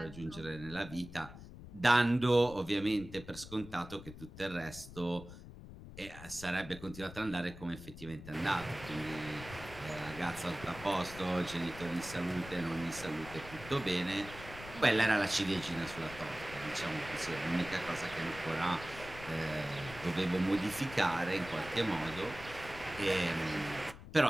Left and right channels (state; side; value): noise; left; rumble, 14 dB below the sound